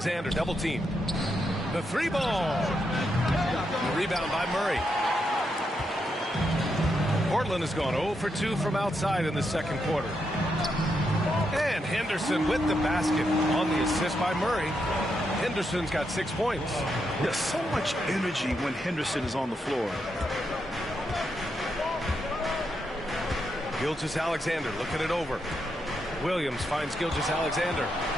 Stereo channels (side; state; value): both; normal; correlation 0.82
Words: double team. The 3 ball. The rebound by Murray. Portland has gone 0 for 2 from outside in the second quarter. And Henderson with the basket on the assist by Murray. Henderson's got 6 points. There's so much energy when Henderson is on the floor. Gilgeous-Alexander looking it over. Williams finds Gilgeous-Alexander.